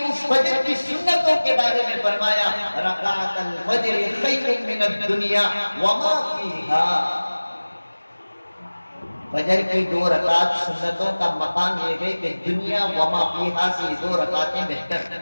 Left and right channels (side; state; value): both; inverted; correlation -1.00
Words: اس فجر کی سنتوں کے بارے میں فرمایا رکعت الفجر خیر من الدنیا وما فیہا. فجر کی 2 رکعت سنتوں کا مقام یہ ہے کہ دنیا وما فیہا سے 2 رکعتیں بہتر ہیں.